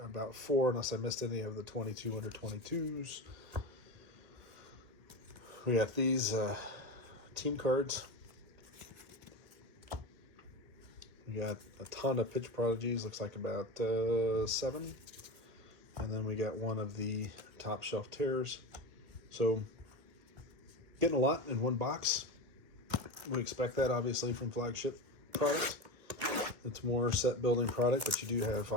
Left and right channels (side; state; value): left; late; 2.1 ms